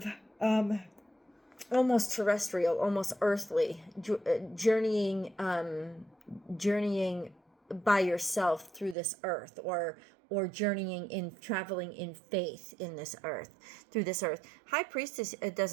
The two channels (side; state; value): left; drops out; at 9.0 s